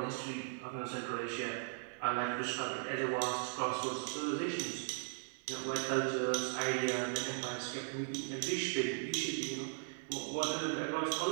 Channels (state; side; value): silent; left; digital silence